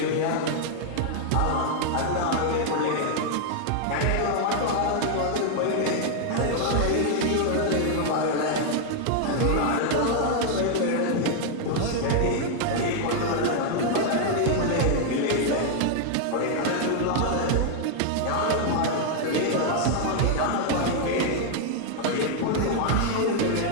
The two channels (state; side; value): different; both; correlation 0.00